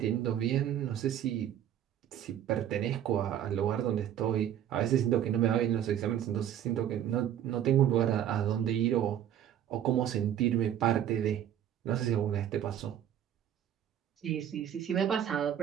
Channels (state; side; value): quieter; left; 10.4 dB